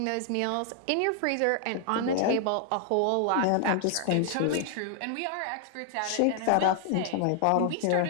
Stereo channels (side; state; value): both; different; correlation 0.00